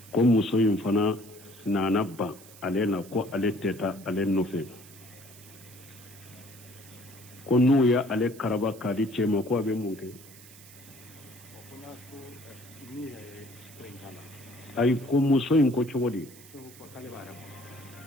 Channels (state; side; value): noise; right; hiss, 20 dB below the sound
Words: ko muso in fana nana ban ale la ko ale tɛ taa ale nɔfɛ ko n'u ye ale karaba k'a di cɛ ma ko a bɛ mun kɛ ayi ko muso in ko cogo di